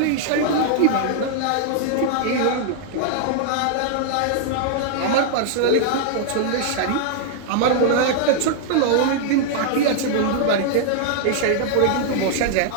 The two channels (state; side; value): different; both; correlation -0.01